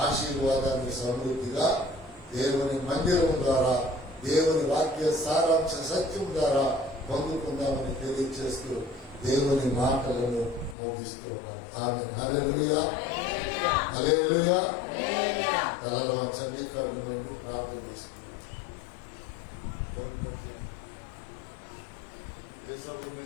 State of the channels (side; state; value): right; drops out; at 10.8 s